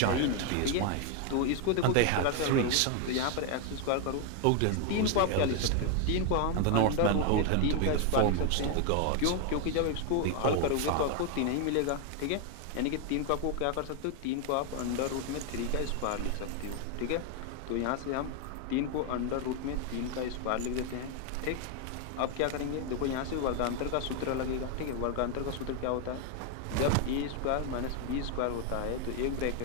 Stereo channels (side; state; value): both; different; correlation 0.01